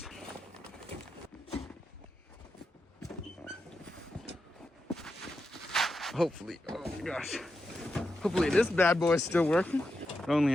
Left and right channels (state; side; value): normal; both; correlation 0.87